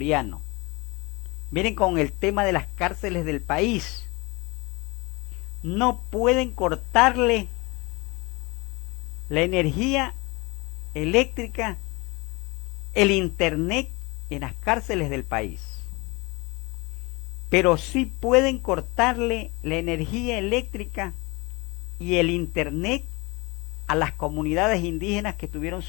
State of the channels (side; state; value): right; quieter; 25.8 dB